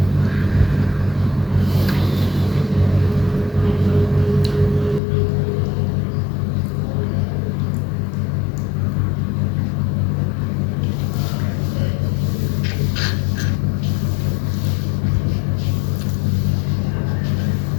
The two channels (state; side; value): drops out; right; at 5.0 s